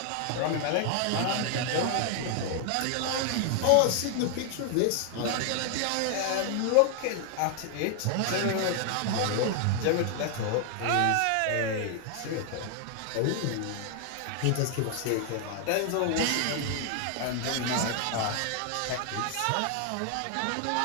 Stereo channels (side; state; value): both; different; correlation 0.00